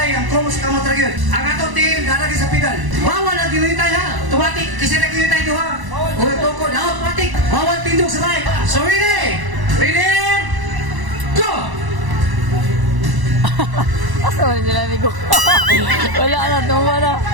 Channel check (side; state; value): left; late; 1.0 ms